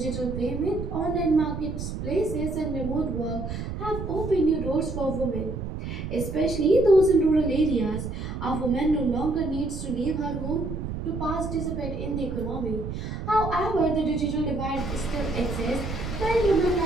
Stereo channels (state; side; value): noise; right; rumble, 6 dB below the sound